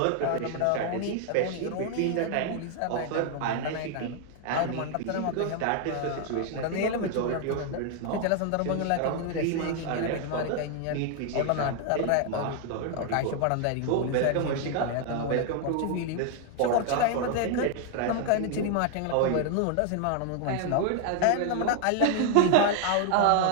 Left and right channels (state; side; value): different; both; correlation 0.00